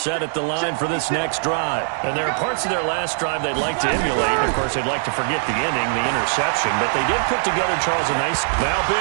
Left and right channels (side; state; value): left; silent; digital silence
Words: at the line for this next drive. And there are parts of their last drive they'd like to emulate. Of course, they'd like to forget the inning, the interception. But they did put together, Charles, a nice